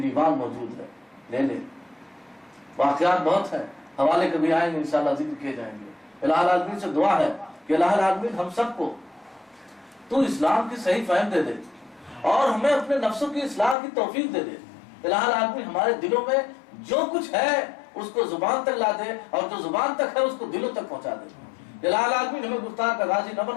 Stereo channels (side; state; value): right; drops out; at 13.8 s